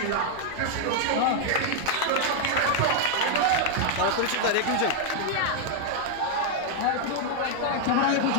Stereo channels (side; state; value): both; different; correlation 0.00